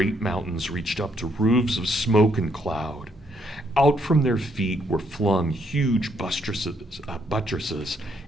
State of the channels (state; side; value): normal; both; correlation 0.72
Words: mountains reached up to roofs of smoke and cloud. Out from their feet were flung huge buttresses